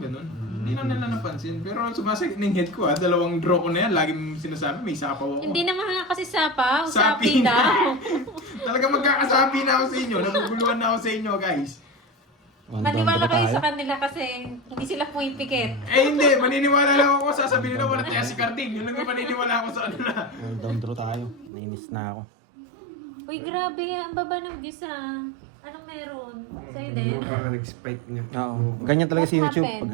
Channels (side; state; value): left; drops out; at 21.5 s